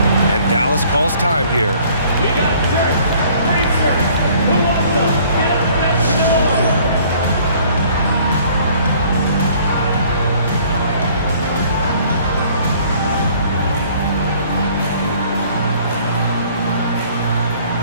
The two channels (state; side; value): inverted; both; correlation -0.56